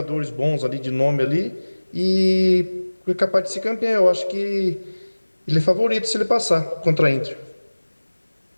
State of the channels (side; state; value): both; inverted; correlation -1.00